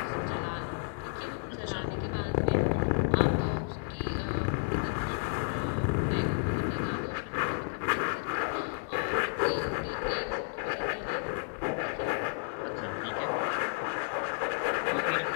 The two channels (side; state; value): right; silent; digital silence